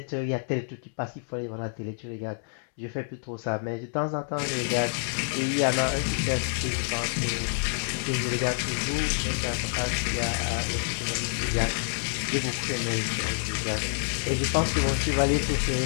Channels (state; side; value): silent; right; digital silence